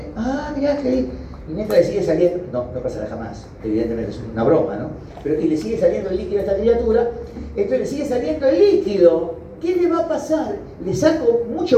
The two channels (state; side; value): identical; both; correlation 1.00